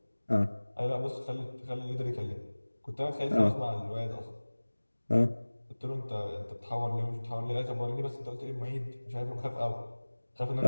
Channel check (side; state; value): both; inverted; correlation -1.00